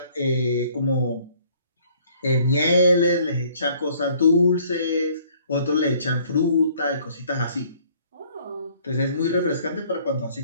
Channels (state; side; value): inverted; both; correlation -0.60